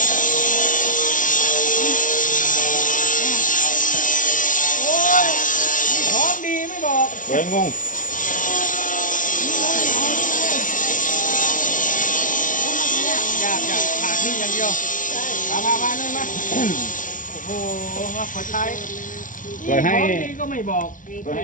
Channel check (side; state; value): right; late; 0.38 ms